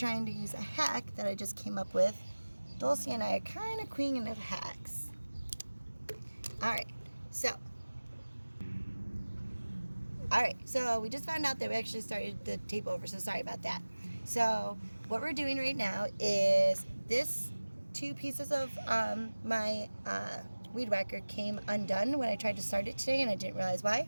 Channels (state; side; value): inverted; both; correlation -1.00